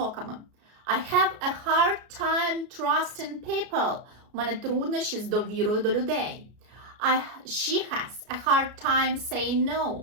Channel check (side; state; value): left; late; 33 ms